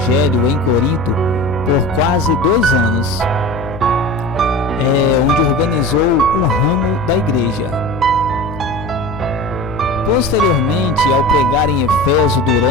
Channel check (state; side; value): noise; left; hum, 12 dB below the sound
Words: em Corinto por quase 2 anos, onde organizou um ramo da igreja. Posteriormente, ao pregar em Éfeso